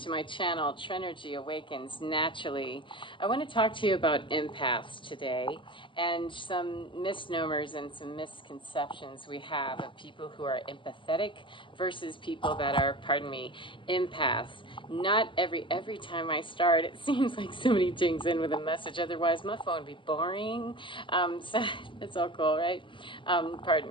my channel, Trenergy Awakens Naturally. I want to talk to you about empaths today and some misnomers and some misconceptions we have of people who are empathetic versus people that are, pardon me, empaths. Not every time I start, it seems like somebody dings in with a message. Otherwise, my phone would be boring. So it's all cool, right? Pardon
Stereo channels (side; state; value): right; late; 0.24 ms